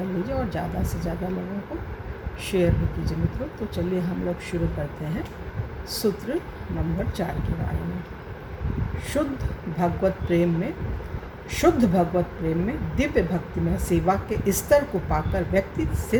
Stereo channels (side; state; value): both; identical; correlation 1.00